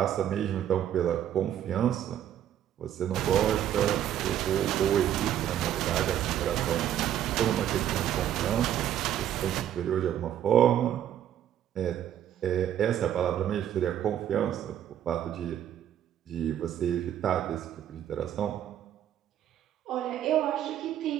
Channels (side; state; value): left; quieter; 10.7 dB